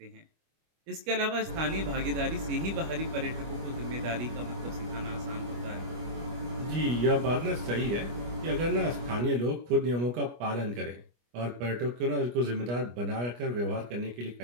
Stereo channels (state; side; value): late; left; 25 ms